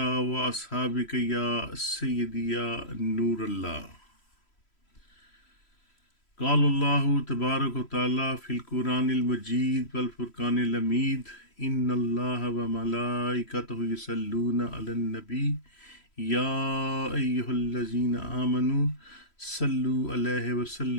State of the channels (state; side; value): late; right; 3.1 ms